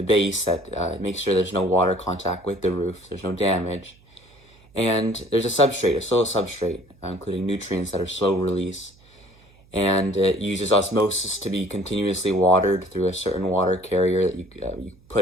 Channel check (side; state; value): right; noise; hum, 28 dB below the sound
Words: base that makes sure there's no water contact with the roof, there's no damage. And there's a substrate, a soil substrate, including nutrients that are slow release. And it uses osmosis to be continuously watered through a certain water carrier that you